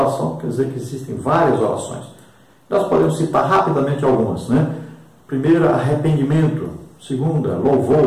quer dizer que existem várias orações. Nós podemos citar rapidamente algumas, né? Primeira, arrependimento. Segunda,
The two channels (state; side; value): identical; both; correlation 1.00